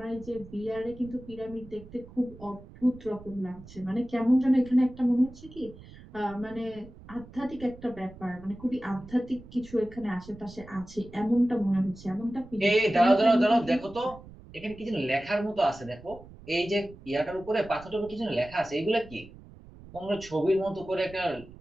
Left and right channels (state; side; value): noise; right; rumble, 19 dB below the sound